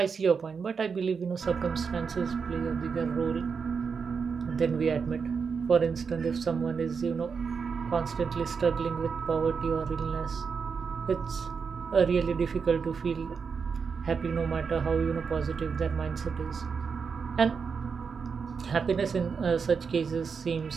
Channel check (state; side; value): quieter; left; 5.7 dB